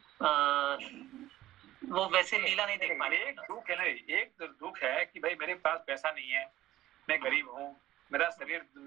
वैसे लीला नहीं देख पा रहे। एक दुख है ना, एक दुख है कि भाई मेरे पास पैसा नहीं है, मैं गरीब हूँ, मेरा शरीर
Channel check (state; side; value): quieter; left; 14.6 dB